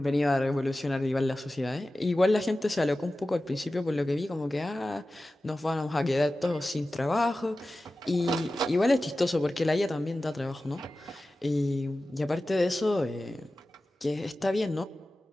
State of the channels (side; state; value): both; normal; correlation 0.95